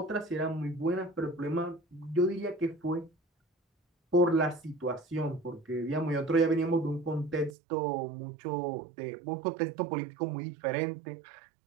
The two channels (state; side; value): drops out; left; at 7.5 s